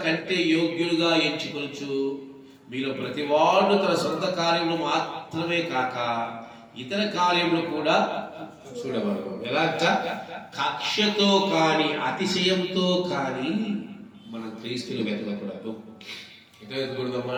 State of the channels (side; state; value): both; identical; correlation 1.00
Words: కంటే యోగ్యులుగా ఎంచుకొనుచు మీలో ప్రతివాడు తన సొంత కార్యములు మాత్రమే కాక ఇతర కార్యములు కూడా చూడవలెను. ఎలాగ? కక్షతో కానీ అతిశయంతో కానీ మనం క్రీస్తులు వెతకకూడదు. ఎట్లా